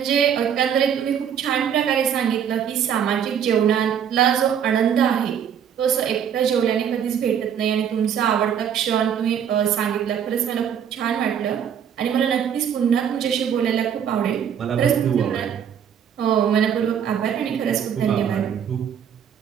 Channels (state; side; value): quieter; left; 8.5 dB